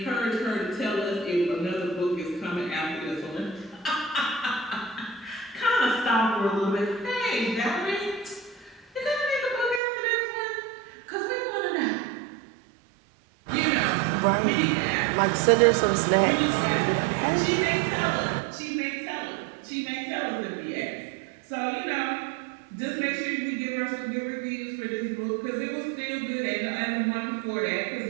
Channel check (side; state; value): left; drops out; at 9.8 s